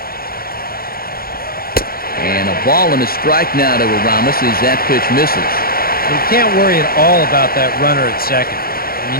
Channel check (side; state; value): right; late; 0.43 ms